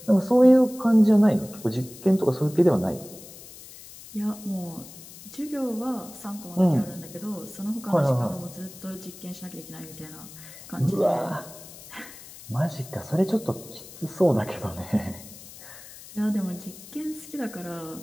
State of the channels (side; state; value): left; noise; hiss, 17 dB below the sound